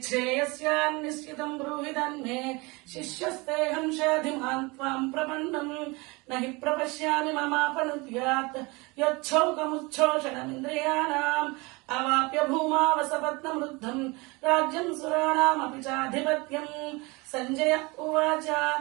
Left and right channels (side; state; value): left; quieter; 25.7 dB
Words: బ్రూహి తన్మే శిష్యస్తేహం షాధిమాన్ త్వాం ప్రపన్నం నహి ప్రపశ్యామి మమాపనుద్యాత్ యచ్చౌకముచ్ఛోషణమింద్రియాణాం అవాప్య భూమావసపత్నమృద్ధం రాజ్యం సురాణామపి చాధిపత్యం. సంజయ ఉవాచ